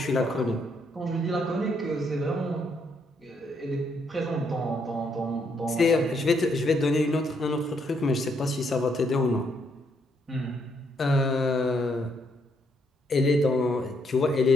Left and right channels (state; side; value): normal; both; correlation 0.73